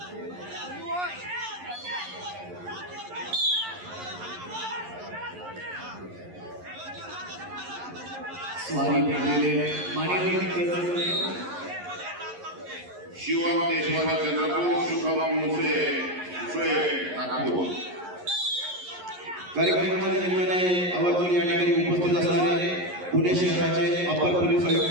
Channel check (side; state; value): left; late; 11 ms